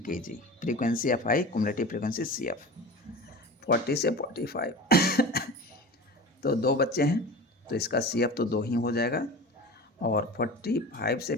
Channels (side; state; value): both; normal; correlation 0.34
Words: kg, frequency F I, cumulative frequency C F. 40 से 45 तो 2 बच्चे हैं तो इसका सी एफ तो 2 ही हो जाएगा। और 45 से